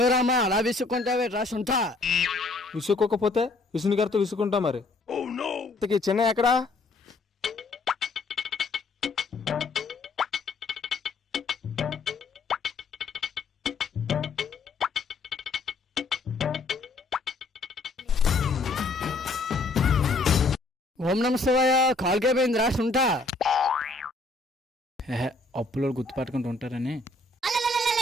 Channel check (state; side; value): quieter; right; 3.5 dB